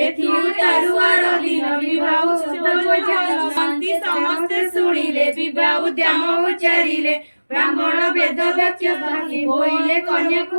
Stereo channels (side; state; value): both; inverted; correlation -1.00